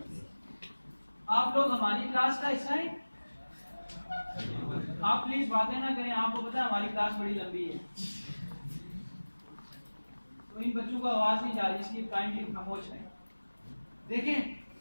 आप लोग हमारी क्लास का हिस्सा हैं। आप प्लीज बातें ना करें, आपको पता है हमारी क्लास बड़ी लंबी है, तो इन बच्चों को आवाज नहीं जा रही, इसलिए काइंडली खामोश है। देखें,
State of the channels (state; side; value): inverted; both; correlation -1.00